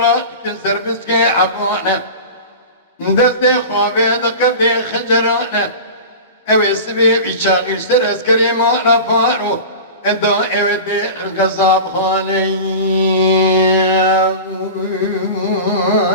كنسر بسكي عبانه دستي خوابي دقبي خجرانه اوه سبي بيشاغل سر اسكري مالا فارو ادا اوه دي قصاب خالي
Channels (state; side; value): inverted; both; correlation -0.32